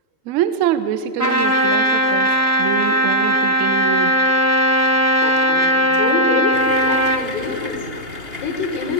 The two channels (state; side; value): late; left; 2.8 ms